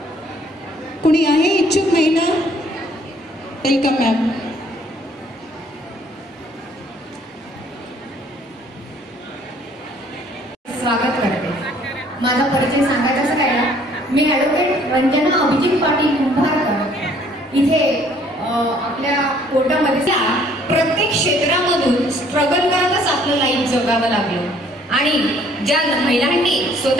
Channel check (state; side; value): normal; both; correlation 0.60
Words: कुणी आहे इच्छुक महिला? Welcome ma'am. स्वागत करते। माझा परिचय सांगायचा काय ना, मी ॲडव्होकेट रंजना अभिजित पाटील कुंभारकर इथे आपल्या कोर्टामध्ये प्रत्येक क्षेत्रामधून स्ट्रगल करतच आपलं लाईफ जगावं लागलं आणि ज्या महिलांनी